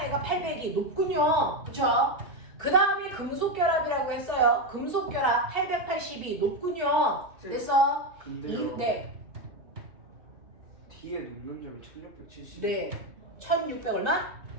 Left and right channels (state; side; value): late; left; 2.8 ms